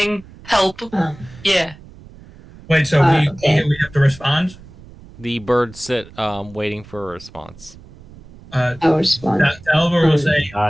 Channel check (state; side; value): noise; right; rumble, 21 dB below the sound